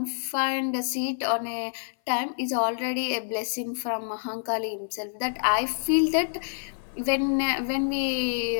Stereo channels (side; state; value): right; silent; 57 dB below the other